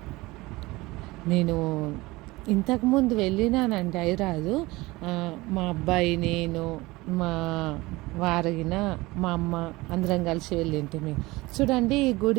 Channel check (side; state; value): left; quieter; 21.1 dB